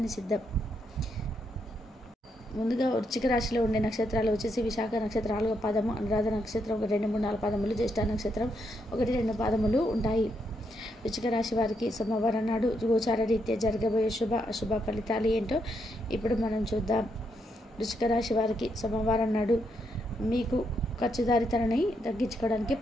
నిషిద్ధం. ముందుగా వృశ్చిక రాశిలో ఉండే నక్షత్రాలు వచ్చేసి విశాఖ నక్షత్రం 4వ పాదము, అనురాధ నక్షత్రం 1, 2, 3, 4 పాదములు, జ్యేష్ఠ నక్షత్రం 1, 2 పాదములు ఉంటాయి. వృశ్చిక రాశి వారికి సోమవారం నాడు గోచార రీత్యా జరగబోయే శుభ అశుభ ఫలితాలు ఏంటో ఇప్పుడు మనం చూద్దాం. వృశ్చిక రాశి వారికి సోమవారం నాడు మీకు ఖర్చుదారితనాన్ని తగ్గించుకోవడానికి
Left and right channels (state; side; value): normal; both; correlation 0.78